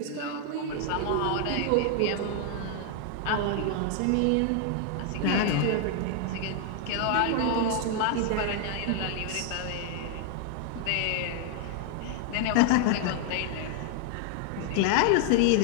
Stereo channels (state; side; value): different; both; correlation 0.00